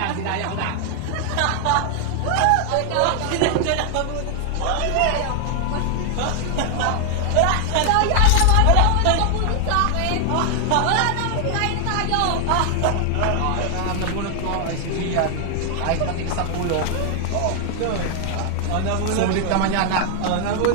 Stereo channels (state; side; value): different; both; correlation 0.00